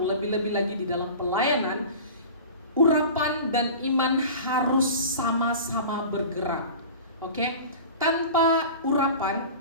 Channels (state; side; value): inverted; both; correlation -0.37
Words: lagi di dalam pelayanan, urapan dan iman harus sama-sama bergerak. Oke? Tanpa urapan,